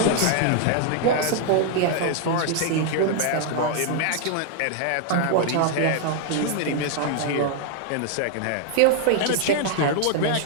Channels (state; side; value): different; both; correlation 0.00